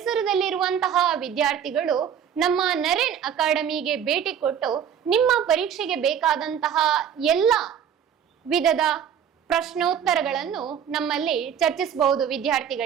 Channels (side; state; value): left; quieter; 8.6 dB